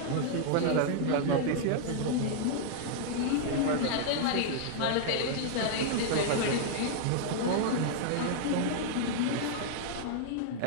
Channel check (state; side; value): different; both; correlation -0.01